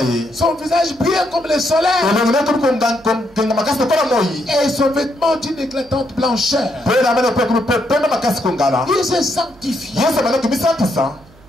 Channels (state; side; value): noise; right; hum, 26 dB below the sound